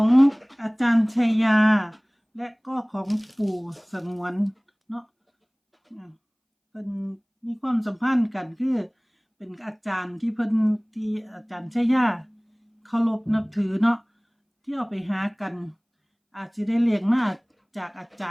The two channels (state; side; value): identical; both; correlation 1.00